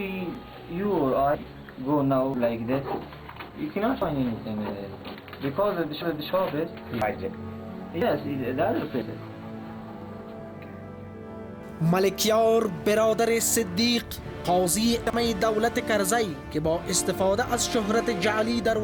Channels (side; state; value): both; identical; correlation 1.00